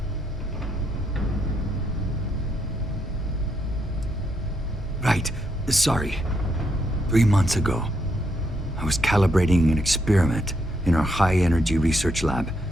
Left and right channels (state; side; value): normal; both; correlation 0.77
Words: Right. Sorry. 3 months ago, I was calibrating an experiment in our high-energy research lab.